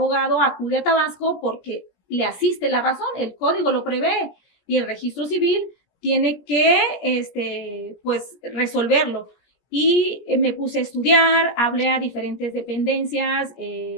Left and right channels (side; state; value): right; late; 17 ms